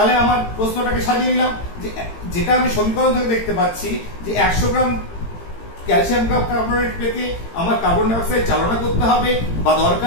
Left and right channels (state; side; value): late; right; 18 ms